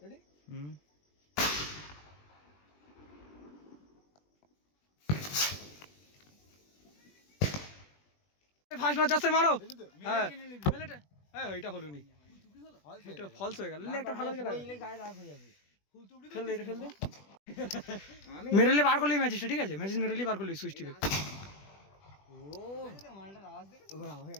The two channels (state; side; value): late; right; 20 ms